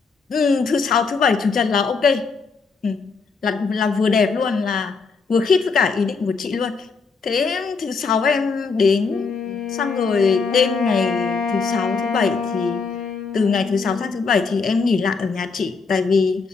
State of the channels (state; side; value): quieter; right; 4.8 dB